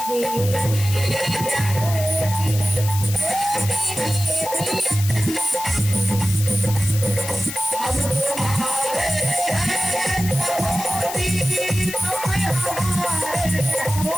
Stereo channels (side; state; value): left; noise; hiss, 8 dB below the sound